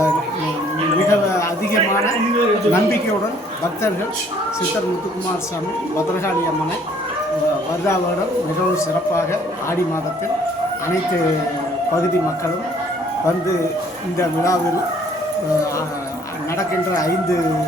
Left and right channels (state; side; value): normal; both; correlation 0.60